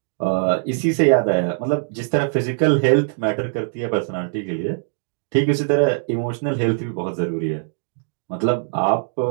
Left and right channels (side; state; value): left; silent; digital silence